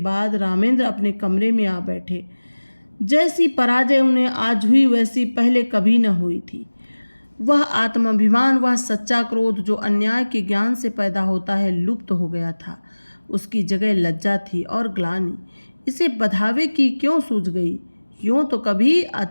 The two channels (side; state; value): both; inverted; correlation -1.00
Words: रामेंद्र अपने कमरे में आ बैठे। जैसी पराजय उन्हें आज हुई वैसी पहले कभी न हुई थी। वह आत्माभिमान, वह सच्चा क्रोध जो अन्याय के ज्ञान से पैदा होता है, लुप्त हो गया था। उसकी जगह लज्जा थी और ग्लानि। इसे बधावे की क्यों सूझ गई? यूँ तो कभी